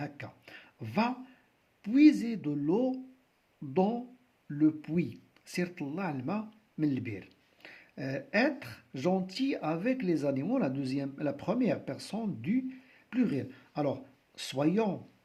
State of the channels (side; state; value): both; identical; correlation 1.00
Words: Va puiser de l'eau dans le puits. سير طلع الماء من البير. Être gentil avec les animaux, la première personne du pluriel. Alors soyons